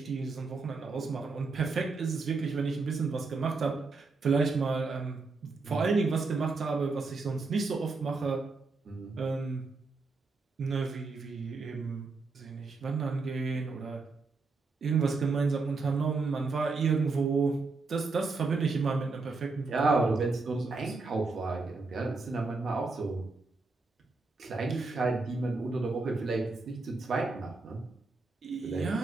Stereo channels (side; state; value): left; quieter; 3.9 dB